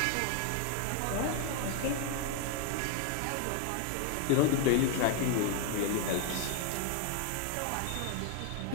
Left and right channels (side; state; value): both; different; correlation 0.00